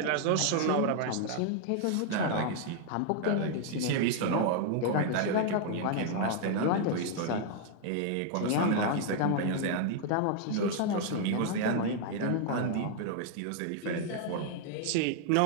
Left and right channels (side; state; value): both; different; correlation 0.00